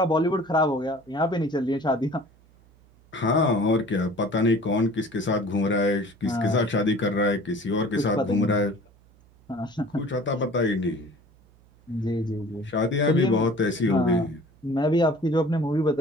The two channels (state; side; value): noise; right; hum, 29 dB below the sound